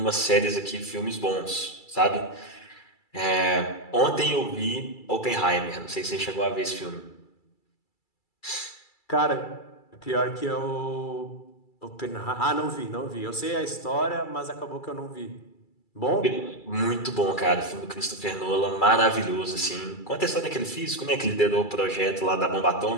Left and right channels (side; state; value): right; late; 2.3 ms